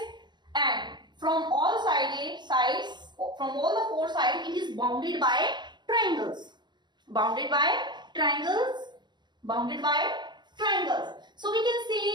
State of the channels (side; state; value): left; late; 0.21 ms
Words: and from all sides, from all the 4 sides, it is bounded by triangles. So we can